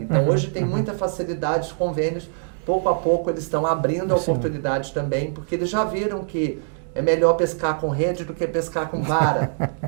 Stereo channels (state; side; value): silent; left; digital silence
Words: Então, hoje tem muita facilidade, os convênios, pouco a pouco, eles estão abrindo a oportunidade também, porque eles já viram que é melhor pescar com rede do que pescar com vara,